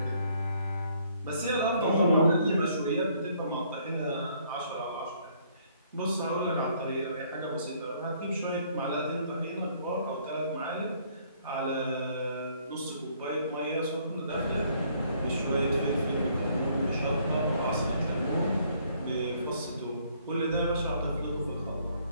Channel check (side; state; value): both; inverted; correlation -0.65